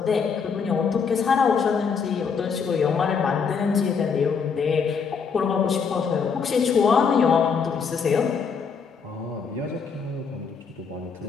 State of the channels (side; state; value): right; quieter; 5.9 dB